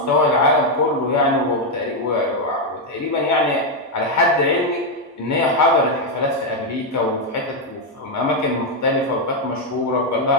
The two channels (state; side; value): normal; both; correlation 0.03